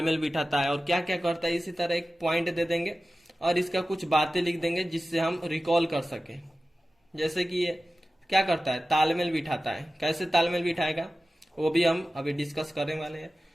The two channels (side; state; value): both; normal; correlation 0.95